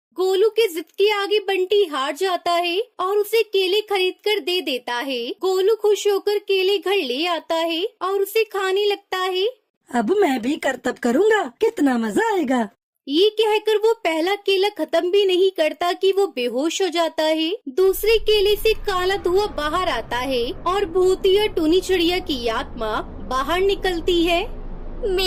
गोलू के जिद के आगे बंटी हार जाता है और उसे केले खरीद कर दे देता है। गोलू खुश होकर केले घर ले आता है और उसे खाने लगता है। अब मैं भी करतब करूंगा, कितना मजा आएगा। ये कहकर वो पहला केला खत्म भी नहीं करता कि वो बेहोश हो जाता है। दूसरे केले से काला धुआं बाहर आता है और भूतिया टूनी चिड़िया की आत्मा बाहर निकलती है।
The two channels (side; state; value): both; identical; correlation 1.00